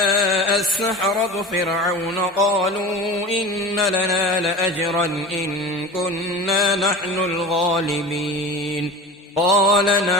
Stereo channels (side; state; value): both; normal; correlation 0.34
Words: السحرة فرعون قالوا إن لنا لأجرا إن كنا نحن الغالبين قال